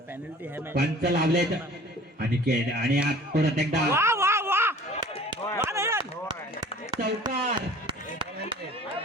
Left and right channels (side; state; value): both; normal; correlation 0.47